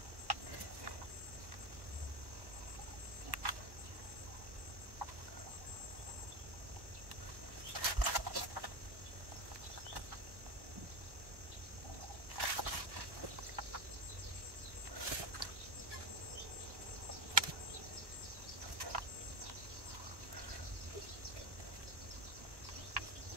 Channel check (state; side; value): late; left; 1.1 ms